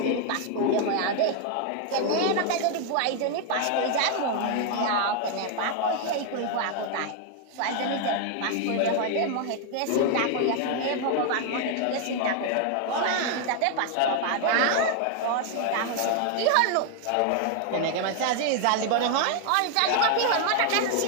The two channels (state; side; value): different; both; correlation 0.00